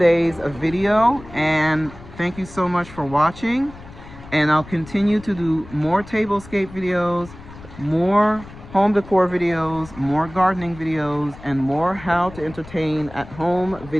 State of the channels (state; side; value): noise; left; rumble, 18 dB below the sound